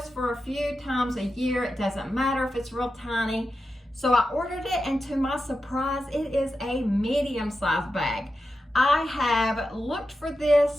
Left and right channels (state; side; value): normal; both; correlation 0.90